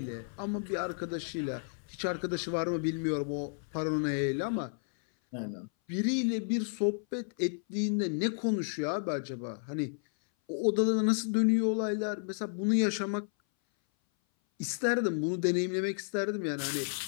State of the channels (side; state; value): right; silent; 56 dB below the other